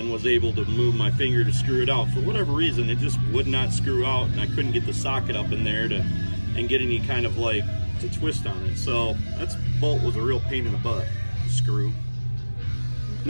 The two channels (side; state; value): both; inverted; correlation -1.00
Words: was able to move my finger to screw it out. For whatever reason, it just would not screw out, and I couldn't get the socket up in there and get any kind of like to twist on it. So that bolt was a real pain in the butt. Screw.